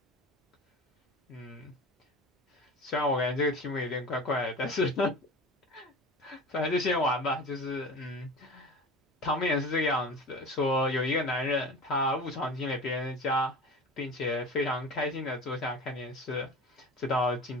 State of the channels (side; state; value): both; normal; correlation 0.35